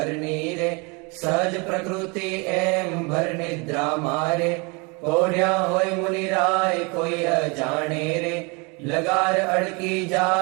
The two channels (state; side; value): quieter; left; 30.1 dB